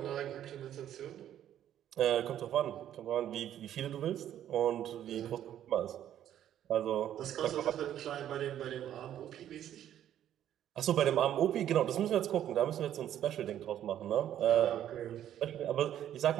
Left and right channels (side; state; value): left; quieter; 11.0 dB